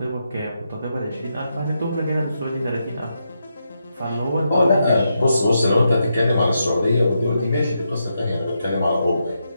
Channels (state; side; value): inverted; both; correlation -0.84